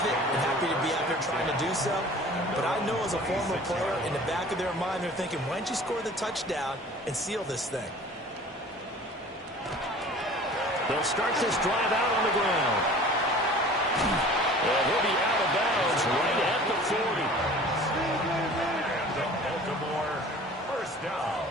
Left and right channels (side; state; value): both; normal; correlation 0.45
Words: it and happy to be out there trying to do so. But I know as a former player, in the back of their mind, they're thinking, why don't you score the touchdown and seal this thing? They'll start this drive out on the ground. And he'll be out of bounds right at the 40. Baltimore, first down.